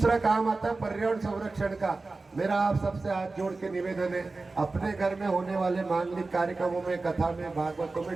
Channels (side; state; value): left; quieter; 3.6 dB